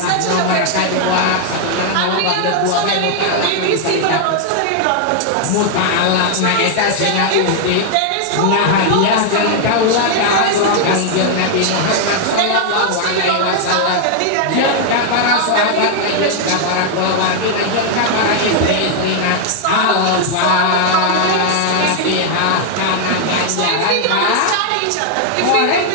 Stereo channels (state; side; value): different; both; correlation 0.00